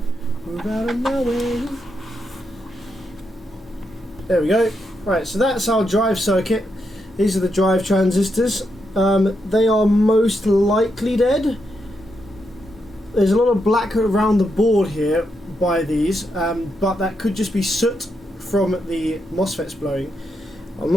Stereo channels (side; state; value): both; normal; correlation 0.82